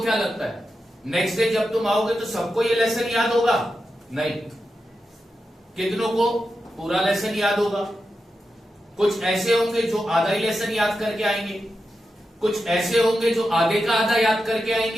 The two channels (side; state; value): both; normal; correlation 0.89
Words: क्या लगता है नेक्स्ट डे जब तुम आओगे तो सबको ये लेसन याद होगा? नहीं। कितनों को पूरा लेसन याद होगा? कुछ ऐसे होंगे जो आधा ही लेसन याद करके आएंगे, कुछ ऐसे होंगे जो आधे का आधा याद करके